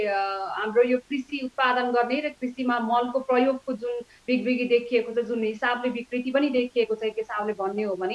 हाम्रो यो कृषि उत्पादन गर्ने र कृषिमा मलको प्रयोगको जुन बिग्रिगी देखिएको छ, जुन हिसाबले विकृति पनि देखिएको छ, एक हिसाबले भन्ने हो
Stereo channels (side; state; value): both; identical; correlation 1.00